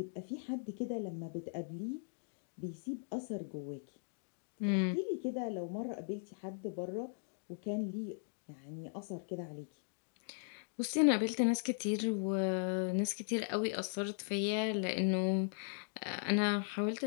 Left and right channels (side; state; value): right; silent; digital silence